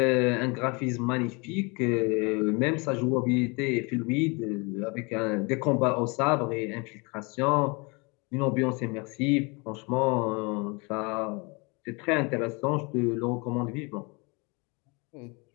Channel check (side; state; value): right; quieter; 29.3 dB